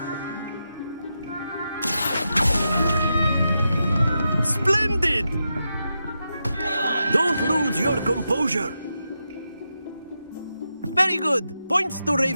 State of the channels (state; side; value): inverted; both; correlation -0.87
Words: Splendid! Don't lose your composure. Very good. Points to